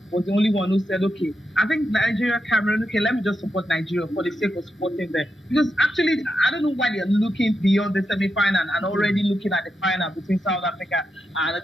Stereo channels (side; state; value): both; normal; correlation 0.86